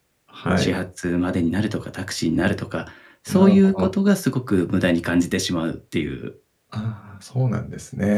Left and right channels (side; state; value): both; identical; correlation 1.00